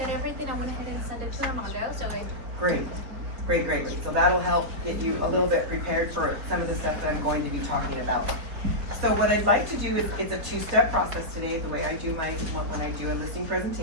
at everything. I went ahead and sent it to Armando. So Great, great, great, great. So that'll help get you a little bit prepared for some of the stuff that I'm going to be talking about. So what I'd like to do is, it's a two-step process today, the way I do when I do a listing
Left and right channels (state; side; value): late; left; 4.4 ms